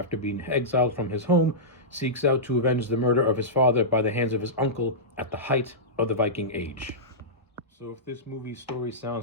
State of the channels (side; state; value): both; normal; correlation -0.15